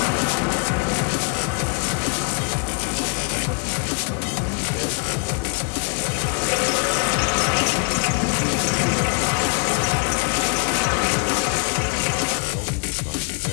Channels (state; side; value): quieter; right; 39.0 dB